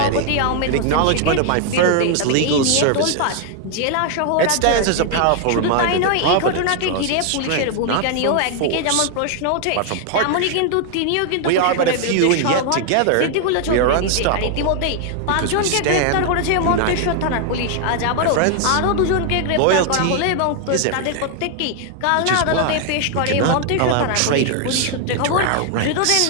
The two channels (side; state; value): both; different; correlation 0.00